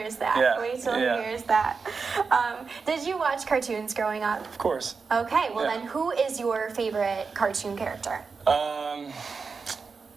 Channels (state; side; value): quieter; left; 4.9 dB